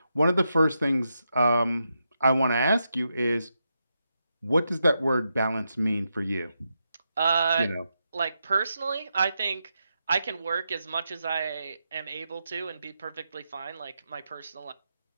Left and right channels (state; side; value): inverted; both; correlation -0.85